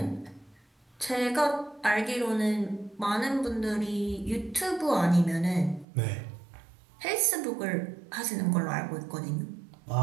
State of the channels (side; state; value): left; drops out; at 5.9 s